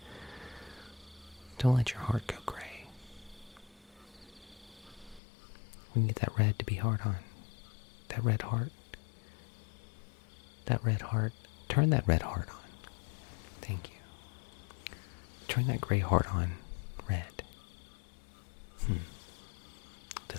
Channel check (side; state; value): right; drops out; at 5.2 s